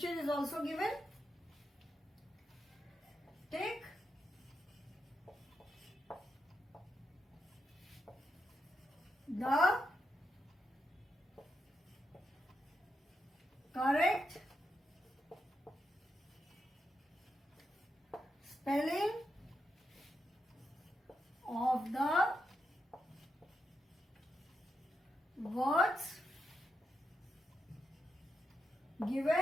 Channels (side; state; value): both; normal; correlation 0.85